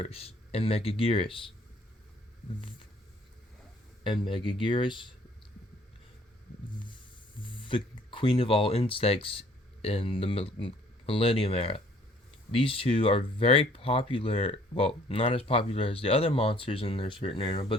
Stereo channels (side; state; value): both; normal; correlation 0.58